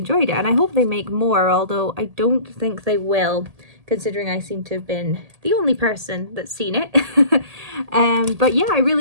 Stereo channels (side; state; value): left; late; 1.8 ms